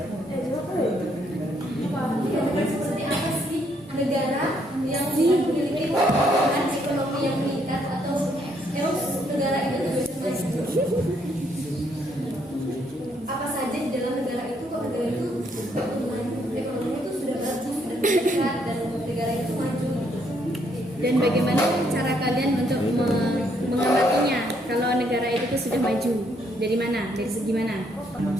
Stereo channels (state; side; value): normal; both; correlation 0.71